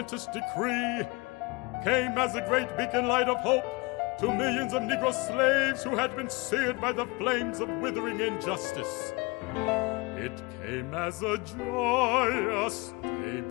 decree came as a great beacon light of hope to millions of Negro slaves who had been seared by the flames of withering injustice. It came as a joyous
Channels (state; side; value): quieter; right; 26.2 dB